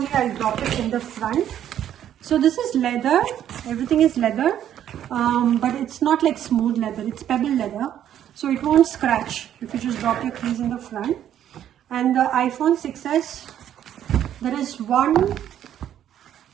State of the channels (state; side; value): quieter; left; 10.6 dB